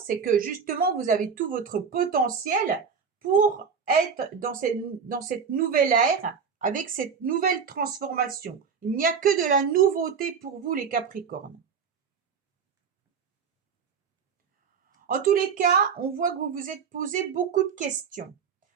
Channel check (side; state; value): left; quieter; 6.2 dB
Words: que justement, vous avez tout votre potentiel pour être dans cette nouvelle ère, avec cette nouvelle transformation. Il n'y a que de la nouveauté pour vous, les Capricornes. En tous les cas, on voit que vous vous êtes posé beaucoup de questions.